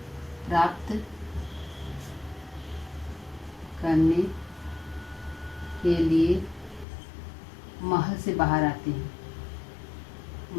प्राप्त करने के लिए महल से बाहर आते हैं।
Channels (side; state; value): right; drops out; at 6.9 s